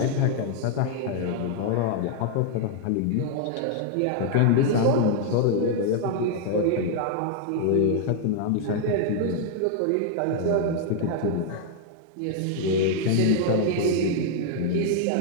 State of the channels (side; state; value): both; different; correlation 0.00